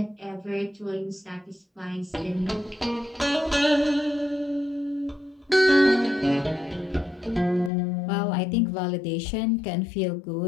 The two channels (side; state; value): right; drops out; at 7.7 s